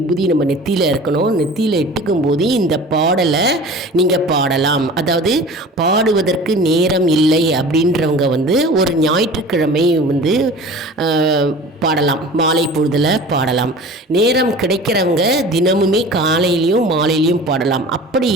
நம்ம நெத்தியில் இருக்கணும். நெத்தியில் இட்டுக்கும் போது இந்த பாடலை நீங்கள் பாடலாம். அதாவது பாடுவதற்கு நேரம் இல்லை அப்படின்றவங்க ஒரு ஞாயிற்றுக்கிழமை பாடலாம், மாலை பொழுதில் பாடலாம். நேரம் கிடைக்கிறவங்க தினமுமே காலையிலையும் மாலையிலையும் பாடலாம். அப்படி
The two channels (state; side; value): normal; both; correlation 0.40